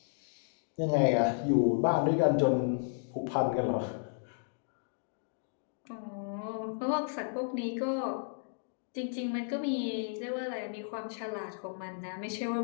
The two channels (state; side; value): silent; right; digital silence